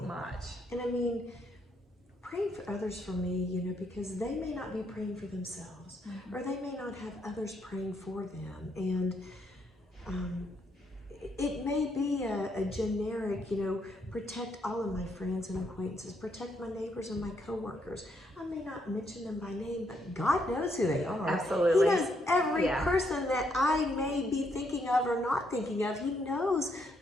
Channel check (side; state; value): both; normal; correlation 0.75